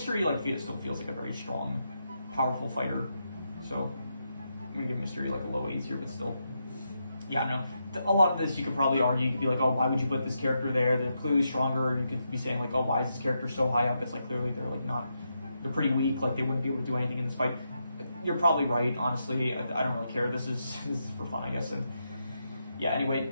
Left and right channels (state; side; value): inverted; both; correlation -0.84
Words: E like still feels like a very strong, powerful fighter, so I'm gonna give Mr. E like a low A tier, but still, yeah, I don't know. A lot of this you could probably argue. You could be like, oh, why would you put this character there? They're clearly stronger. You could be saying like, oh, why is this character so high up? It's like clearly they're like not, they're pretty weak. Like they wouldn't be able to do anything in this fight. You're probably right, honestly. I don't really care. This is for fun, I guess. And yeah,